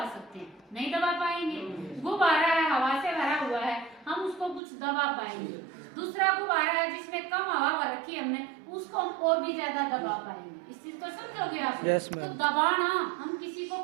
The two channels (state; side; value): drops out; left; at 4.6 s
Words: सकते हैं? नहीं दबा पाएंगे। गुब्बारा है, हवा से भरा हुआ है, हम उसको कुछ दबा पाएंगे। दूसरा गुब्बारा है जिसमें कम हवा रखी हमने, उसको हम और भी ज्यादा दबा पाएंगे। इस चीज को समझोगे आप? yes, तो दबाना, हम किसी को